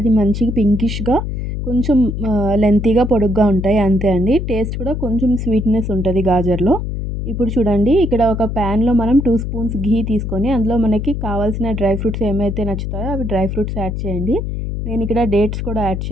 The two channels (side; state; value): left; noise; hum, 4 dB below the sound